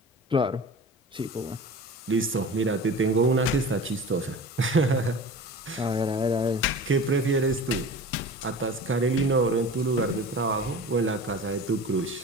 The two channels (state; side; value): normal; both; correlation 0.36